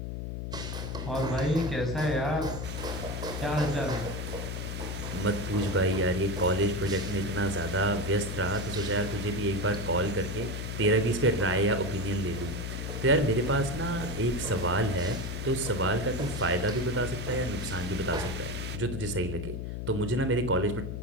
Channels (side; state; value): left; noise; hum, 5 dB below the sound